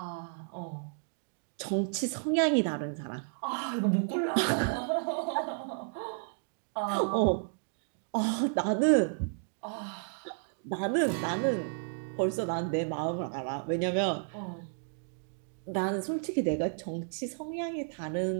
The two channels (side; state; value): left; silent; digital silence